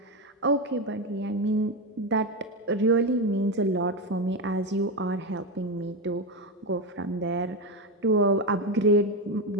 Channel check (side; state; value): both; normal; correlation 0.12